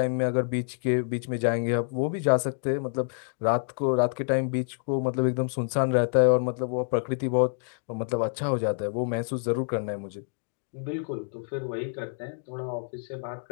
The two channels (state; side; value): silent; right; digital silence